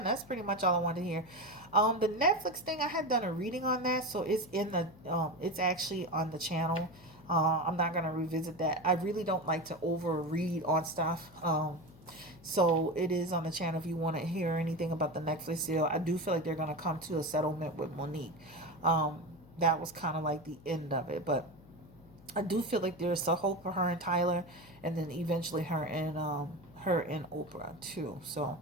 that's pretty much all I wanted to hear. The Netflix thing, I had done a reading on that, so it's it's actually on the channel. I'm not gonna revisit that. I really don't like to over read on stuff. So it is on the channel if you want to hear anything about the Netflix deal. I do feel like they're gonna come to a settlement with Monique. That was kind of like the end of it, but I do feel like there's a hope for her and Tyler, and then eventually her and Oprah too. So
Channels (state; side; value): noise; left; hum, 23 dB below the sound